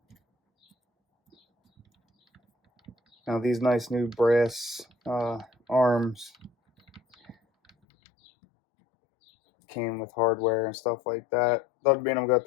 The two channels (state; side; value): drops out; right; at 7.7 s